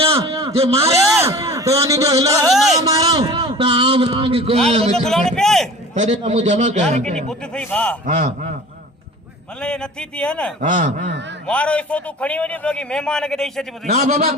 जे मारे तो अनि जो हिला ना मारो तो आम नांग को तेरे का मु जमा कर किनी बुद्ध सही भा हां मल्ले ये नथी थी है ना हां मारो इसो तू खणी वनी तो कि मेहमान के देई छती बुधी ना बाबा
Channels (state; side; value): normal; both; correlation 0.41